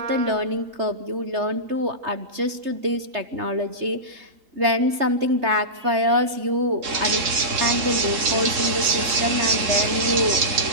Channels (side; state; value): left; late; 3.3 ms